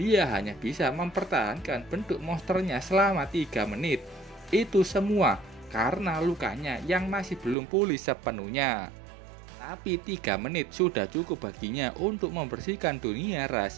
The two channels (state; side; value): drops out; left; at 7.6 s